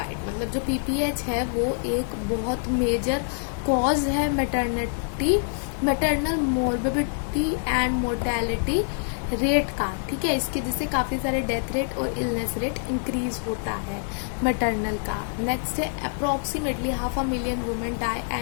मतलब जो पीपीएच है वो एक बहुत मेजर कॉज है maternal morbidity and mortality rate का। ठीक है, इसके जिससे काफी सारे डेथ रेट और इलनेस रेट इंक्रीज होता है मैटरनल का। नेक्स्ट है approximately 500,000 women die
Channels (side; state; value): right; silent; 61 dB below the other